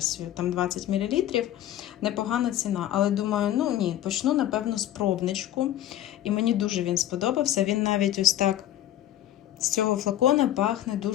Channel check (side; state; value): right; quieter; 12.7 dB